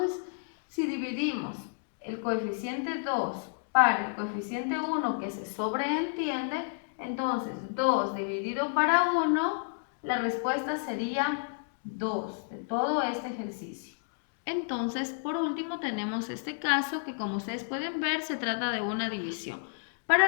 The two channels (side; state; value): right; silent; digital silence